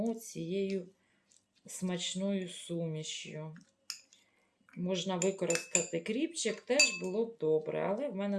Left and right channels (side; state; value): both; identical; correlation 1.00